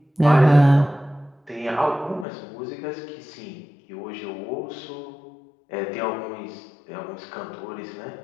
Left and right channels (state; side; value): drops out; right; at 2.2 s